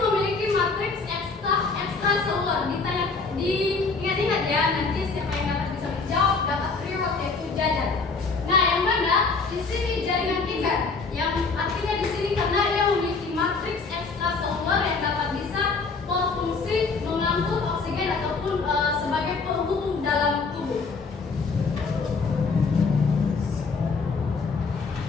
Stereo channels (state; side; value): quieter; right; 4.4 dB